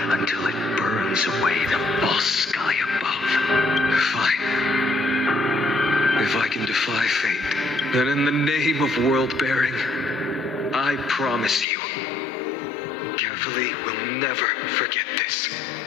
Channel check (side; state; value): right; drops out; at 11.7 s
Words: until it burns away the false sky above. Fine. If I can defy fate, then in the name of world-bearing, I promise you, carefully will never forget this.